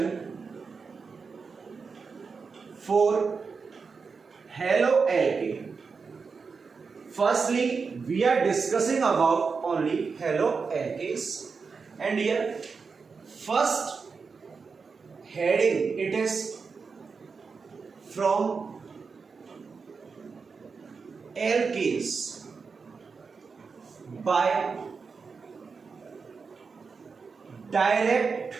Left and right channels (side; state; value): left; quieter; 5.1 dB